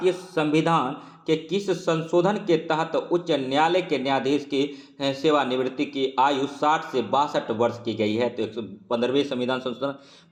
संविधान के किस संशोधन के तहत उच्च न्यायालय के न्यायाधीश की सेवानिवृत्ति की आयु 60 से 62 वर्ष की गई है? तो 115वें संविधान संशोधन।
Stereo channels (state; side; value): identical; both; correlation 1.00